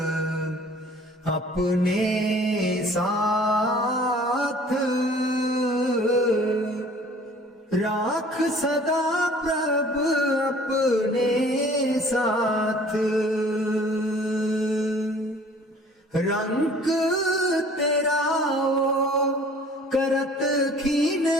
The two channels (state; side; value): normal; both; correlation 0.51